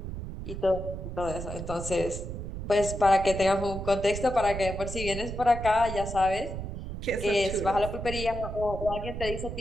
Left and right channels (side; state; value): right; noise; rumble, 7 dB below the sound